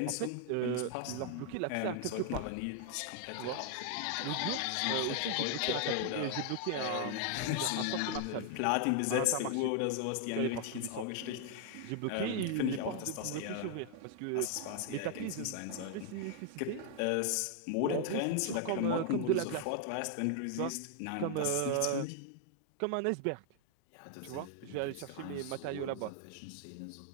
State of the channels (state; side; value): different; both; correlation 0.00